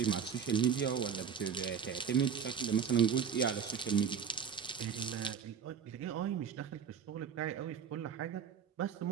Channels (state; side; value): quieter; left; 7.2 dB